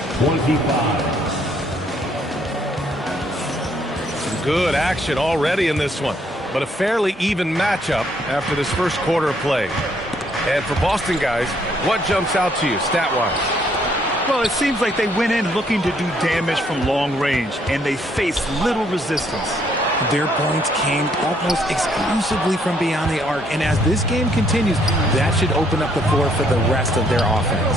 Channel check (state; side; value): normal; both; correlation 0.68